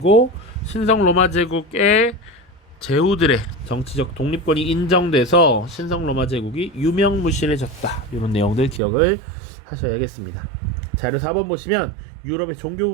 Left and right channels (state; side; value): drops out; left; at 8.8 s